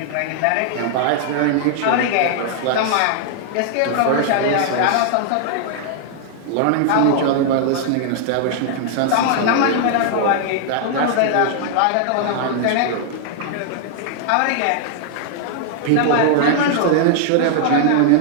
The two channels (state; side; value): different; both; correlation -0.01